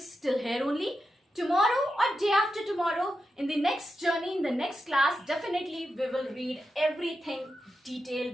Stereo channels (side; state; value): both; normal; correlation 0.88